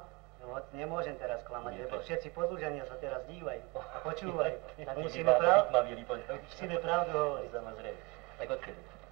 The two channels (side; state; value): left; quieter; 26.2 dB